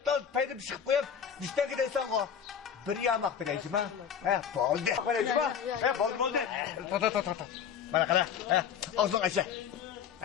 tal paydım çıkıp koyup. Düşten gidersen o. Bir yamak vereceğim ha. He, boldu. Vereceğim ha. He, boldu. Ta. Bana kadar. He, ağzın aşağı.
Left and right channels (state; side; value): quieter; right; 7.9 dB